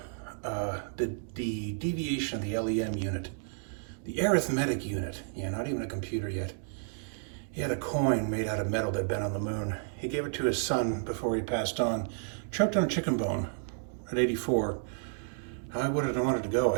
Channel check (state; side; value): silent; left; digital silence